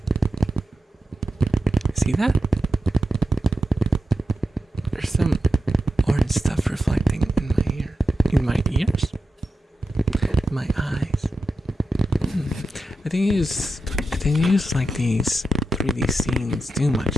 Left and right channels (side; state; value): both; normal; correlation 0.89